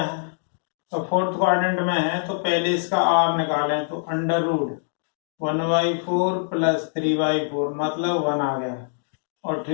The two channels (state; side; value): silent; right; digital silence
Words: है। तो फोर्थ क्वाड्रेंट में है तो पहले इसका आर निकालें, तो अंडर रूट 1/4 प्लस 3/4 मतलब 1 आ गया। और